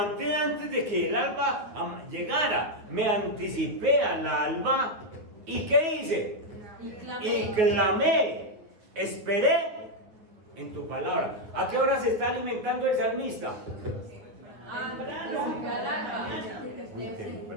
antes de que el alba llegara, me anticipé al alba. ¿Y qué hice? Y clamé, esperé en tu palabra. ¿A qué hora se está alimentando el salmista? Muy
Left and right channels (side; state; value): left; late; 9.5 ms